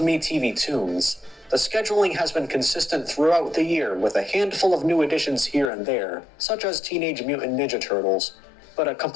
Tunes, the scheduling has been consistent throughout the year with a handful of new additions here and there, such as Teenage Mutant Ninja Turtles, but a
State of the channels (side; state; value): right; drops out; at 5.7 s